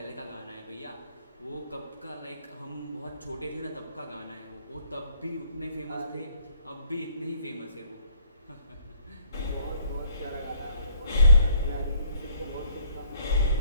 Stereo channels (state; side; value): inverted; both; correlation -0.63